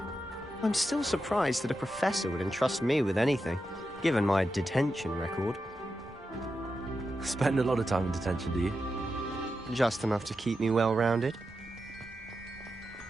I'm still surprised that a professor would entrust me with anything, given my detention record. Spend a lot of time in detention, do you? Just enough to keep me well-rounded.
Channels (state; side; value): normal; both; correlation 0.88